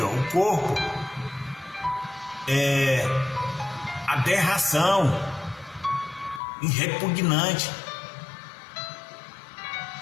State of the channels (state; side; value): drops out; right; at 6.4 s